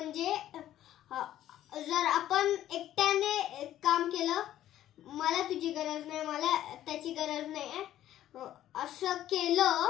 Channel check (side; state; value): right; quieter; 12.6 dB